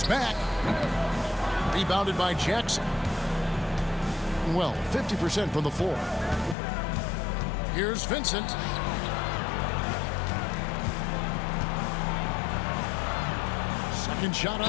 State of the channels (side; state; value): right; drops out; at 6.6 s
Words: back. Rebounded by Jackson. Well, 50% from the floor. Here's Vincent. Second shot